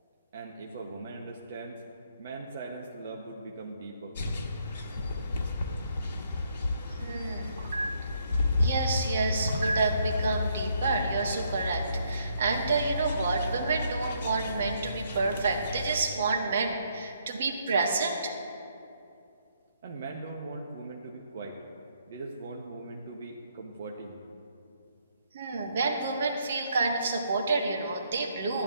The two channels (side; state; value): both; inverted; correlation -0.72